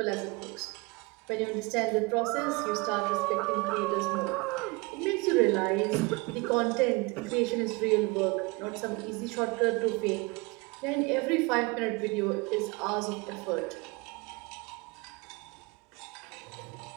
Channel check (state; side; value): quieter; left; 26.5 dB